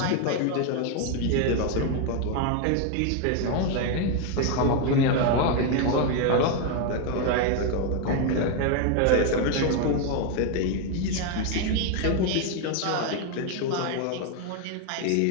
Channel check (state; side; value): different; both; correlation 0.01